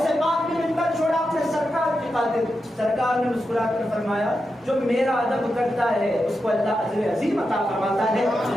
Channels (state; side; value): normal; both; correlation 0.88